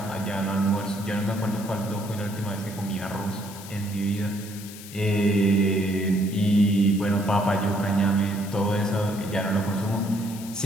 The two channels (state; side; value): noise; left; hiss, 15 dB below the sound